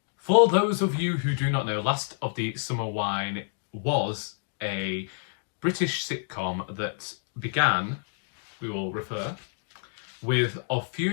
For those of you who do not know, Last of the Summer Wine was a British sitcom that began, we will refer, with Of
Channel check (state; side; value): silent; right; digital silence